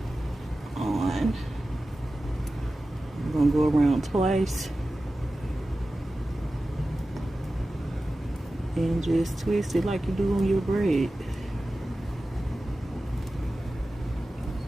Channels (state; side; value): normal; both; correlation 0.95